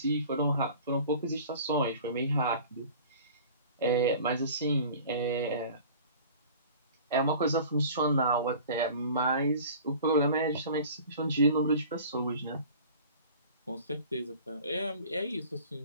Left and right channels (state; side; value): inverted; both; correlation -0.44